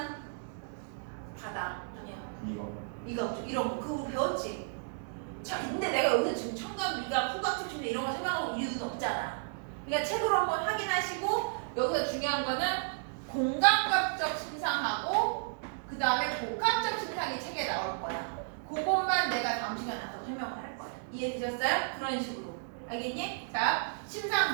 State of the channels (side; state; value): left; silent; digital silence